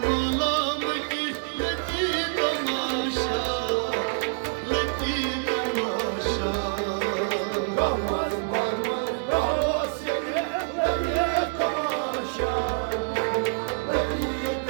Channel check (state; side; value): silent; left; digital silence